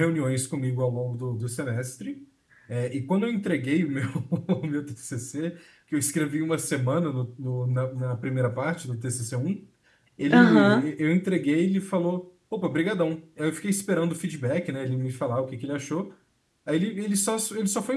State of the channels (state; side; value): identical; both; correlation 1.00